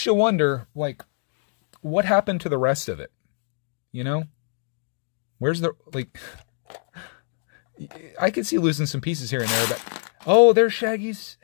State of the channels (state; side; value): silent; right; 61 dB below the other